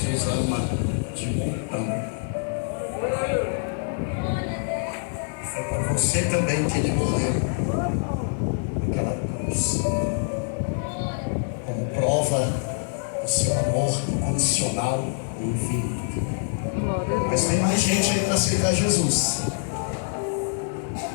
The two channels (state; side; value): silent; right; digital silence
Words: ama de montão. Foi por você também que ele morreu naquela cruz, como prova do seu amor incondicional e infinito. Mas tem mais gente aí para aceitar Jesus.